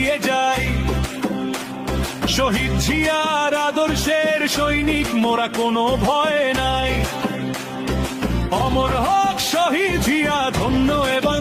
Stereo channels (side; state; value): both; identical; correlation 1.00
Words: যাই, শহীদ জিয়ার আদর্শের সৈনিক মোরা, কোনো ভয় নাই। অমর হক শহীদ জিয়া, ধন্য এ